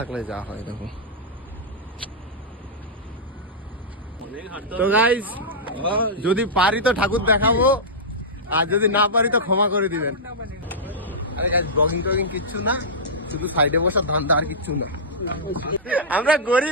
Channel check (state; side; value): normal; both; correlation -0.11